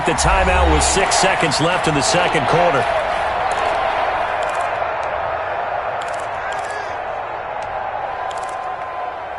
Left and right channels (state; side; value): identical; both; correlation 1.00